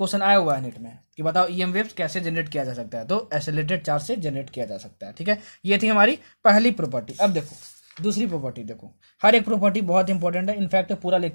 आया हुआ है नेट में कि बताओ ईएम वेव्स कैसे जनरेट किया जा सकता है, तो एसिलेटेड चार्ज से जनरेट किया जा सकता है, ठीक है। ये थी हमारी पहली प्रॉपर्टी। अब देखो दूसरी प्रॉपर्टी, देखो हर एक प्रॉपर्टी बहुत इंपॉर्टेंट है, इनफैक्ट पूरा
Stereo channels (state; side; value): inverted; both; correlation -1.00